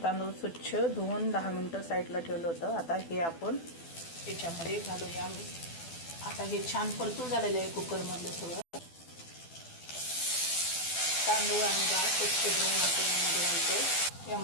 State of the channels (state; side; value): late; right; 12 ms